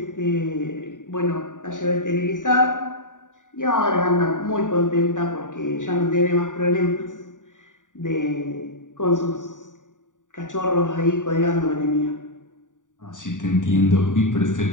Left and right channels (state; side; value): late; right; 0.87 ms